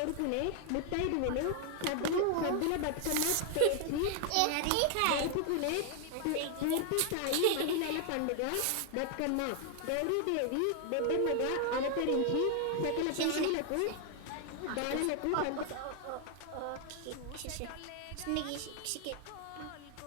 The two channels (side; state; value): both; different; correlation 0.00